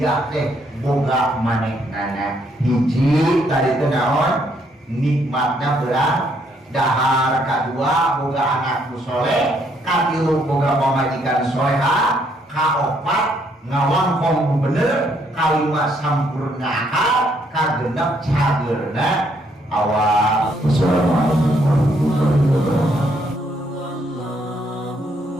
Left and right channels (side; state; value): both; normal; correlation 0.71